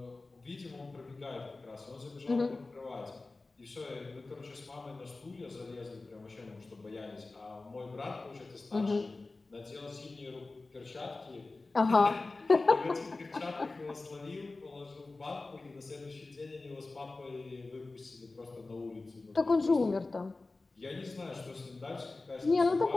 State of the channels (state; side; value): quieter; right; 3.4 dB